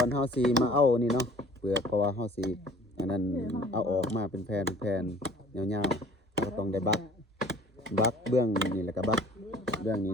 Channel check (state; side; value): normal; both; correlation 0.50